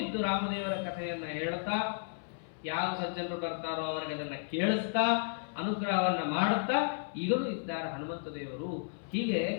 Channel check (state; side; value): silent; right; 56 dB below the other